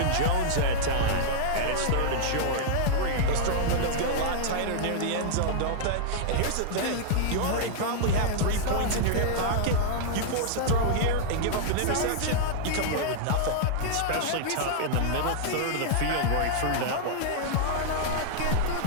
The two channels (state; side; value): different; both; correlation -0.01